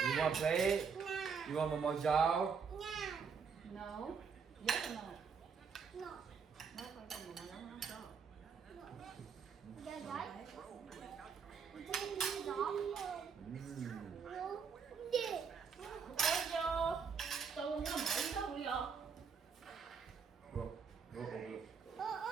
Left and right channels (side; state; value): left; quieter; 6.1 dB